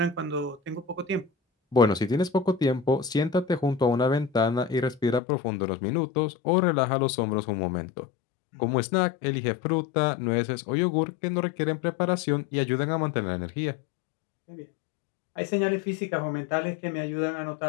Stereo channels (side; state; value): right; drops out; at 5.2 s